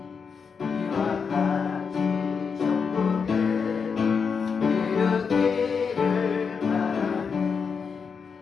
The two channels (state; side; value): quieter; right; 5.8 dB